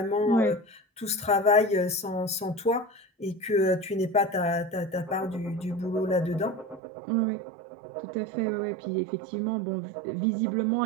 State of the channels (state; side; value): drops out; left; at 6.8 s